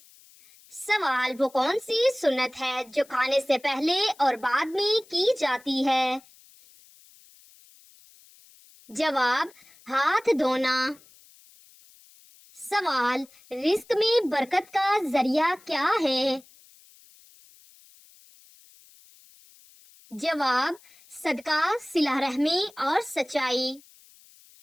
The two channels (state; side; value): noise; left; hiss, 26 dB below the sound